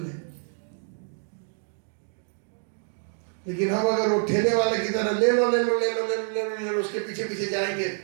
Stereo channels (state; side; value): silent; left; 60 dB below the other